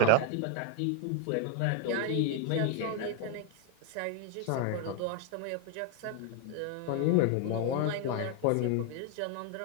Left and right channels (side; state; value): both; different; correlation 0.00